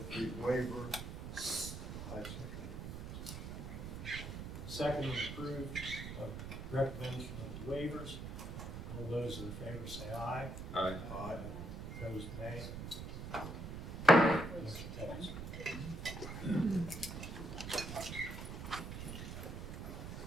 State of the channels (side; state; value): right; noise; rumble, 7 dB below the sound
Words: the waiver, I second. Second is approved of recommendation of the waivers. All those in favor say aye. Aye. Aye. Opposed, nay. Motion carries.